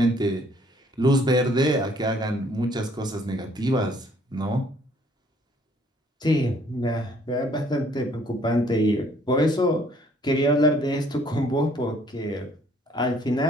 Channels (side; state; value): both; normal; correlation 0.61